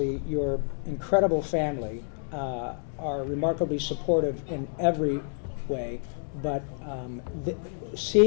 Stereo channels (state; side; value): silent; right; 59 dB below the other